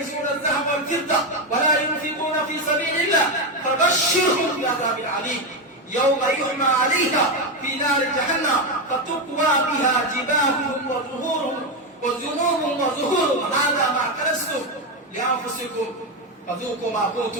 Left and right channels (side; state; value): both; normal; correlation 0.10